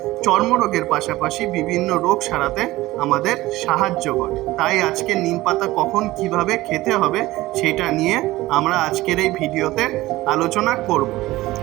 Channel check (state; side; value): quieter; left; 18.0 dB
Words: চর্মরোগের পাশাপাশি বিভিন্ন রোগ সারাতে আমাদের সাহায্য করে। তাই আজকে নিম পাতা কখন কিভাবে খেতে হবে সেটা নিয়ে আমরা আজকের এই ভিডিওতে আলোচনা করব।